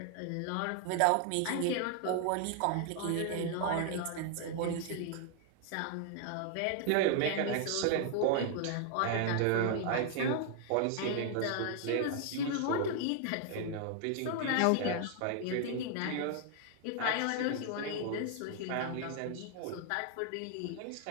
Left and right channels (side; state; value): both; different; correlation 0.00